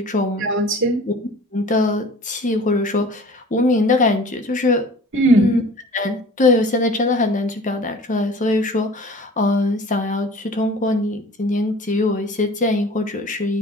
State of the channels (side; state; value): both; normal; correlation 0.44